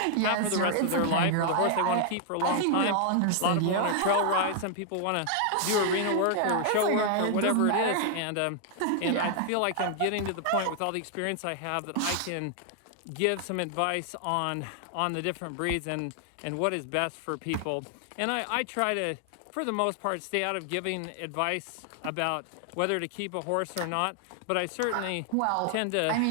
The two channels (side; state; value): both; different; correlation 0.00